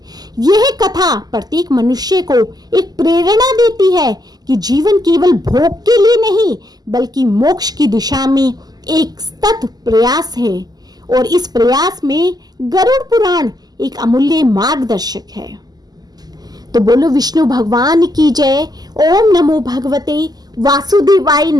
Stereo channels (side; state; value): left; late; 0.19 ms